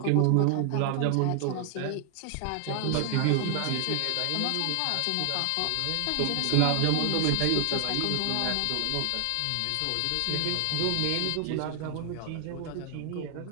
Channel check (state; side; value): different; both; correlation 0.00